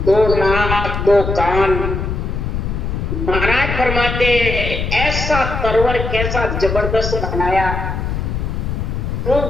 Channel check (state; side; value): noise; left; rumble, 3 dB below the sound